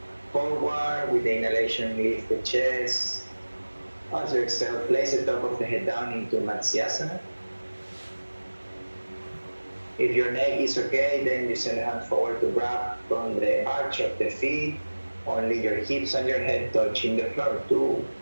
Forward with the inhalation, lift the chest. As you exhale, place the top of the head down into Matsyasana. If your neck is okay, then you send the hand forward to grab from the arch of the feet. Only your hips and your head touching the floor. 2,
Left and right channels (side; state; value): both; inverted; correlation -1.00